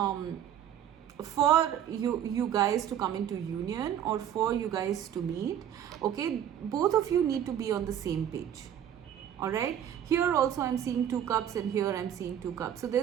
for you guys to come into union, or for you guys to meet, okay, both of you need to be on the same page, all right. Here also I'm seeing 2 cups, and here I'm seeing 2 cups, so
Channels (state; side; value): quieter; left; 10.0 dB